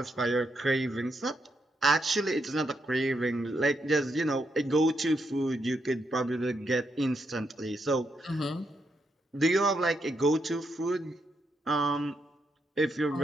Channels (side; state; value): both; normal; correlation 0.80